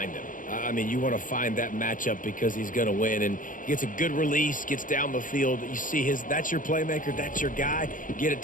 him. I mean, you want to find that matchup because he's going to win, and he gets a good release, gets down the field. You see that's your playmaker, that's your guy. Get it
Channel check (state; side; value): late; right; 0.39 ms